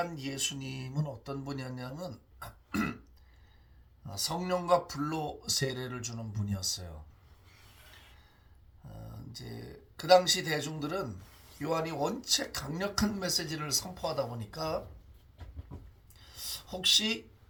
예수님은 어떤 분이었냐면 성령과 불로 세례를 주는 분이었어요. 이제 그 당시 대중들은 요한이 원체 강력한 메시지를 선포하다 보니까 혹시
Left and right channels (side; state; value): both; identical; correlation 1.00